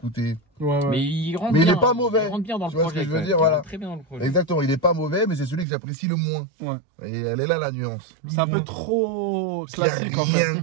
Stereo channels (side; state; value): left; drops out; at 5.7 s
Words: Mais il rentre bien. Mais il est pas mauvais. Il rentre bien dans le projet. Tu vois ce que je veux dire, voilà. Très bien dans le projet. Exactement, il est pas mauvais, mais c'est celui que j'apprécie le moins. Ouais. Et elle est là la nuance. C'est un peu trop classique en fait.